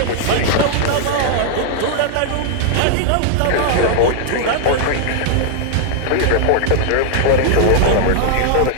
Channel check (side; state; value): both; different; correlation -0.01